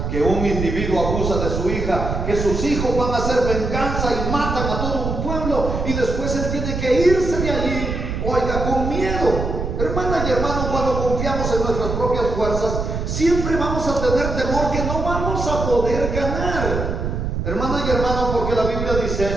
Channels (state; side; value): noise; right; rumble, 3 dB below the sound